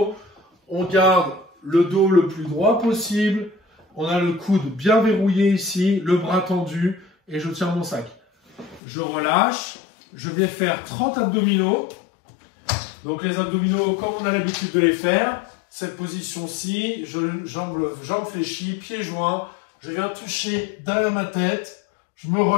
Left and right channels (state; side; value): drops out; right; at 8.8 s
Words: on garde le dos le plus droit possible, on a le coude bien verrouillé ici, le bras tendu et je tiens mon sac. Je relâche. Je vais faire 30 abdominaux. Donc les abdominaux, comme on a l'habitude de les faire, cette position-ci, jambes fléchies, pieds joints, je viens toucher derrière ma tête, je me